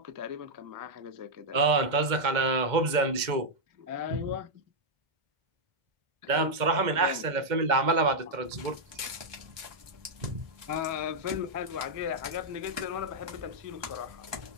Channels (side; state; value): left; late; 2.1 ms